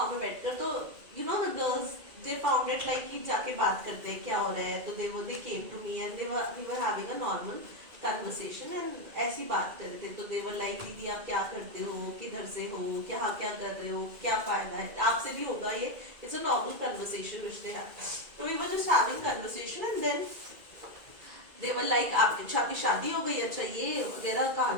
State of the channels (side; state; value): left; late; 2.2 ms